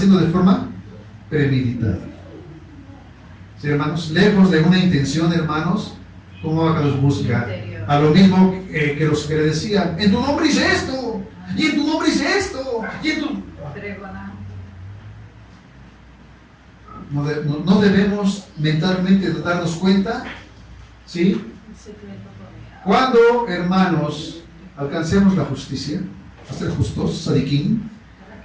de forma premeditada. ¿Sí, hermanos? Lejos de una intención, hermanos, ¿cómo Abacados busca? a lo mismo que los que le decían, en tu nombre hice esto, y en tu nombre hice esto, y en tu... No debemos mentalmente darnos cuenta, ¿sí? Cuando, hermanos, alcancemos la justicia, a ser justos, sadiquín,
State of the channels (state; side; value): identical; both; correlation 1.00